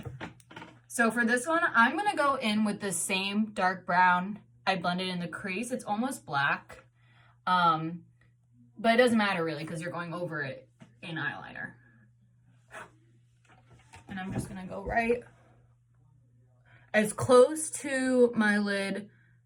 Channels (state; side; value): identical; both; correlation 1.00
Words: So for this one, I'm gonna go in with the same dark brown I blended in the crease. It's almost black. But it doesn't matter really because you're going over it in eyeliner. And I'm just gonna go right as close to my lid,